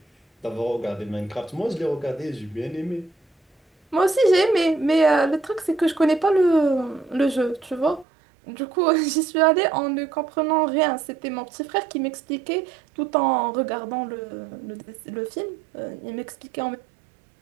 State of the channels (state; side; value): drops out; left; at 8.1 s